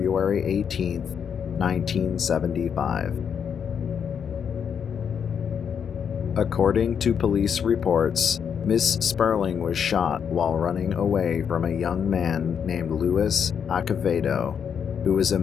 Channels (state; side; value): quieter; right; 7.5 dB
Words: 18, 1975. According to police reports, Miss Sperling was shot while running away from a young man named Louis Acevedo, who was